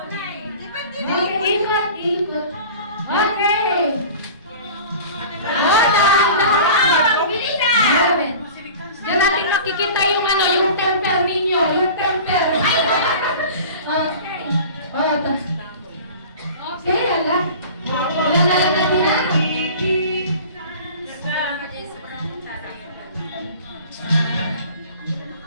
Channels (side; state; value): both; inverted; correlation -0.40